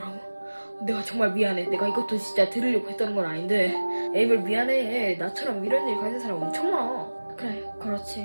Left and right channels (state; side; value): inverted; both; correlation -1.00